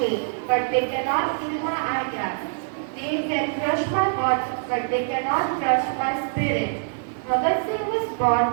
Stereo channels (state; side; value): silent; left; 55 dB below the other